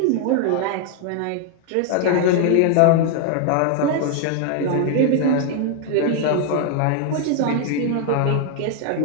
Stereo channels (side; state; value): both; different; correlation 0.00